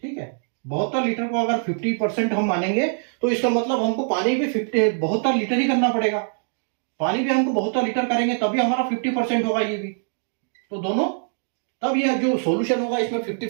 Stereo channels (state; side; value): silent; left; 63 dB below the other